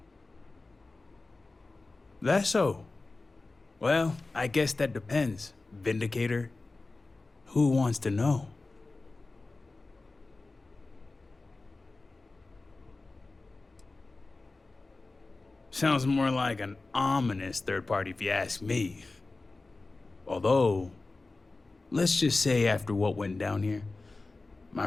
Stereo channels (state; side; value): quieter; right; 3.4 dB